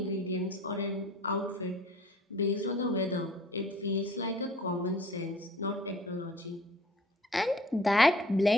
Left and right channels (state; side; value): normal; both; correlation 0.50